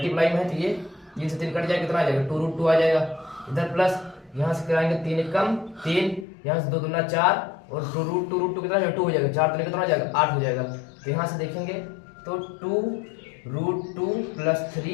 में है तो ये 3 से 3 कट जाएगा कितना आ जाएगा 2√2 आ जाएगा। इधर प्लस यहाँ से कराएंगे 3 एकम 3, यहाँ से 2 दूना 4 और 2√2 कितना 2 हो जाएगा। 4 कितना हो जाएगा 8 हो जाएगा। तो यहाँ से देखेंगे तो 2√2 प्लस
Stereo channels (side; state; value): right; drops out; at 6.2 s